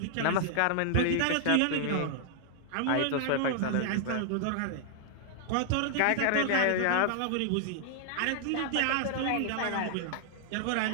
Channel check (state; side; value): different; both; correlation 0.00